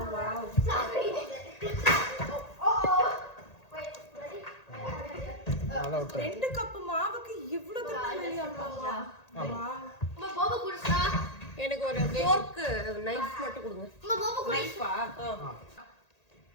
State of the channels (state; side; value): late; right; 1.8 ms